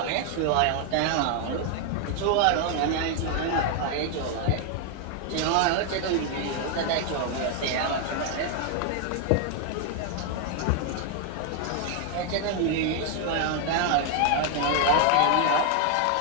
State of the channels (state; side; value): different; both; correlation 0.00